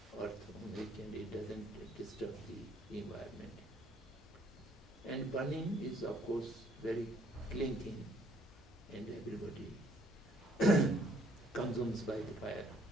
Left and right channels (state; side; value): normal; both; correlation 0.63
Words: earth on it, and it doesn't disturb the environment. And burning is of course very clean thing, and everybody consumes by the fire.